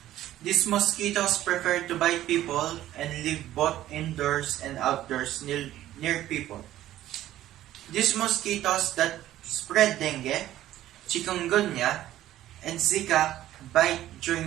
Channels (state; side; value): quieter; left; 13.6 dB